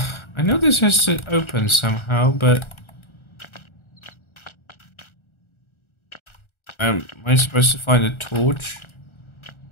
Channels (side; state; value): right; late; 1.4 ms